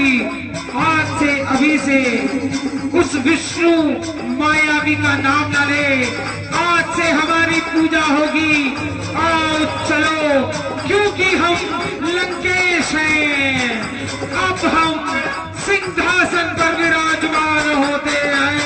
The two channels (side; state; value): both; identical; correlation 1.00